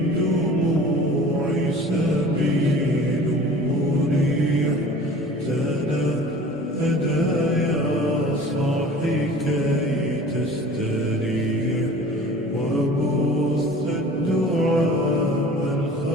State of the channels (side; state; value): both; normal; correlation 0.43